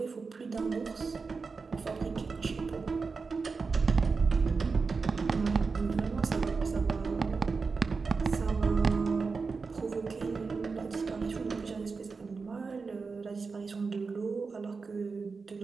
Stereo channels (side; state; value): left; quieter; 4.6 dB